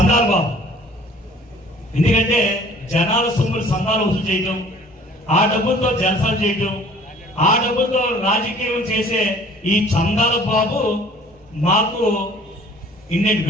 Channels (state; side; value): normal; both; correlation 0.52